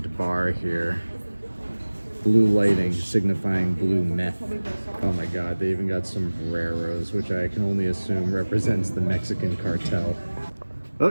bar here. Blue lighting signifying blue meth. Oh my god, they even got sombreros, which I can only assume represents the Mexican cartel. Oh,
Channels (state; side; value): inverted; both; correlation -1.00